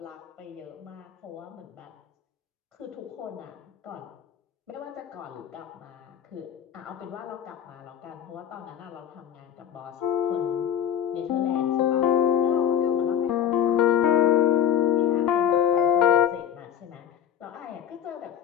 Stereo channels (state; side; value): quieter; right; 9.3 dB